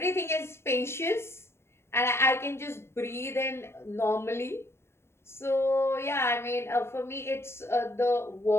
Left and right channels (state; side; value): late; right; 0.12 ms